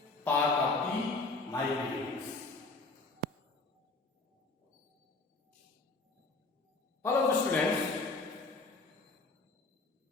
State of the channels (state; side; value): quieter; right; 3.5 dB